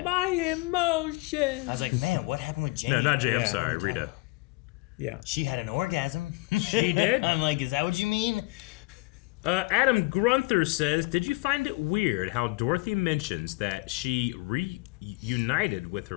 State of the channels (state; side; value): quieter; right; 24.6 dB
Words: My emotions. I was like, man, what happened with Jane? No, not Jane. I'm sorry, Rita. Yeah. She had an orgasm. She did? I'm like, is that what you mean? Adam Grunther says, did you find it weird how Dorothy mentions that she reunited with